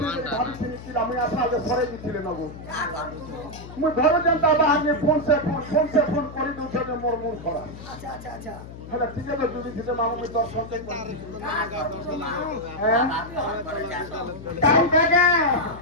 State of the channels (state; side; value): noise; left; hum, 14 dB below the sound